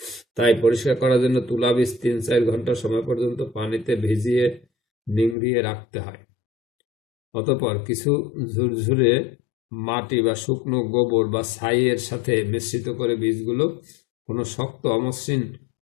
তাই পরিষ্কার করার জন্য তুলা বীজ 3-4 ঘন্টা সময় পর্যন্ত পানিতে ভিজিয়ে নিংড়িয়ে রাখতে হয়। অতঃপর কিছু ঝুরঝুরে মাটি বা শুকনো গোবর বা ছাইয়ের সাথে মিশ্রিত করে বীজগুলো কোনো শক্ত অমসৃণ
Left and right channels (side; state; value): right; drops out; at 5.4 s